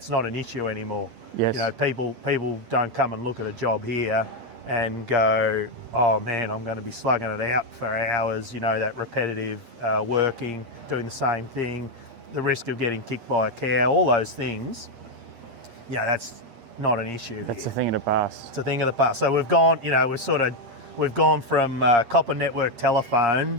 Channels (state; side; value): late; left; 8.5 ms